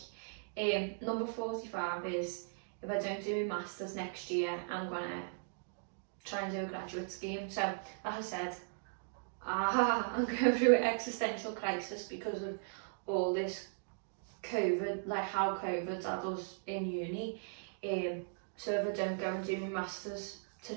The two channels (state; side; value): silent; left; digital silence